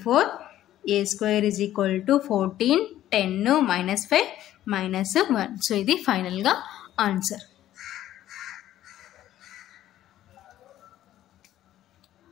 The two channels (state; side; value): quieter; right; 12.9 dB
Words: a square is equal to 14 10 -5 -1. So ఇది ఫైనల్గా ఆన్సర్.